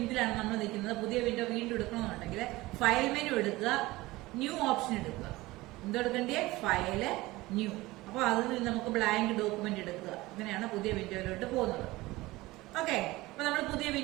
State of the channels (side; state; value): left; quieter; 19.6 dB